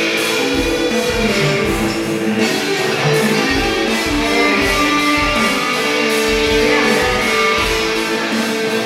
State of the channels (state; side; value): identical; both; correlation 1.00